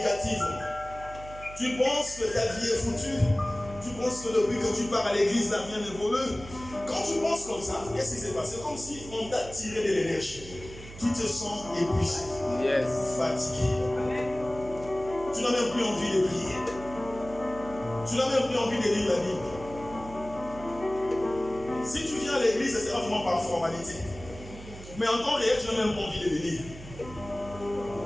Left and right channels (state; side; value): noise; right; hum, 15 dB below the sound